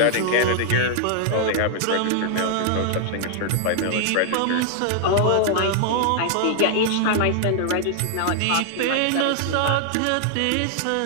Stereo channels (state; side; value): different; both; correlation -0.01